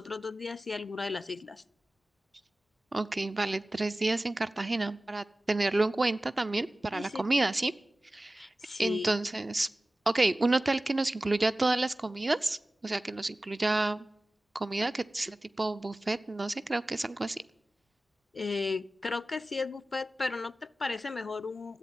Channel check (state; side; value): normal; both; correlation 0.96